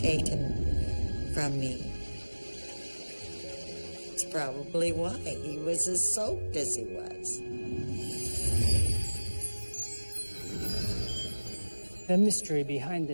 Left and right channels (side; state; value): both; inverted; correlation -1.00